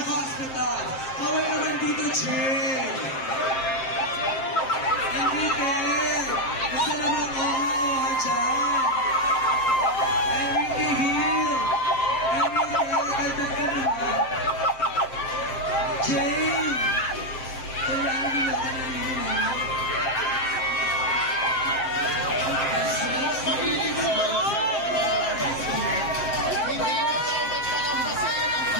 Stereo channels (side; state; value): right; late; 7.6 ms